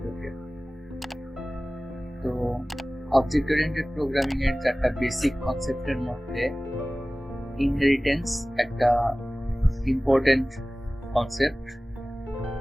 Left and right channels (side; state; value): both; normal; correlation 0.98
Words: তো অবজেক্ট ওরিয়েন্টেড প্রোগ্রামিং এর চারটা বেসিক কনসেপ্টের মধ্যে ইনহেরিটেন্স একটা ইম্পর্টেন্ট কনসেপ্ট।